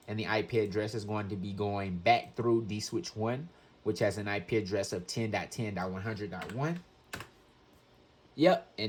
And the IP address is going to be going back through dswitch 1, which has an IP address of 10.10.100.1. Yep,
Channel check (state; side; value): identical; both; correlation 1.00